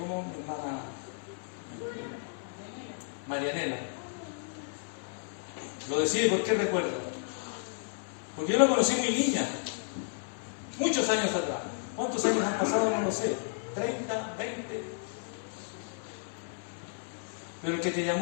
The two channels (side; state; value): right; silent; 56 dB below the other